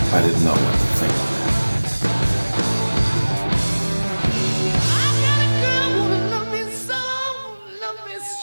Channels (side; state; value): both; inverted; correlation -1.00